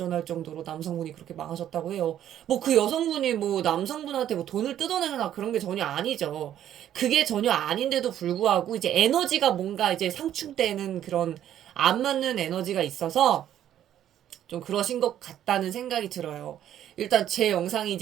정도로 남성분이 그렇게 망하셨다고 해요. 뭐 그 여성분이 뭐 남성분한테 뭐 돈을 뜯어내거나 그런 게 전혀 아니죠. 그게 전혀 아닌데도 불구하고 이제 에너지가 뭔가 이제 상충되는 그런 안 맞는 에너지가 있어서 좀 그러신 것 같다는 생각이 들어요. 일단 제 영상이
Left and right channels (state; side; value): quieter; left; 11.1 dB